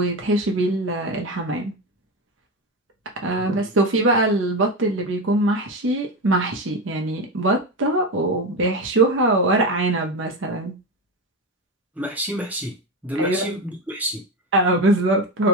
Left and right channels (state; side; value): normal; both; correlation 0.18